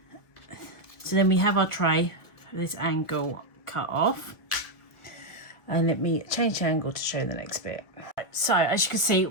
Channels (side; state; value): right; late; 1.7 ms